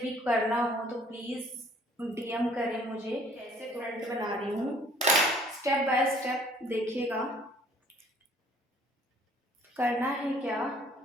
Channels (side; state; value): both; normal; correlation 0.57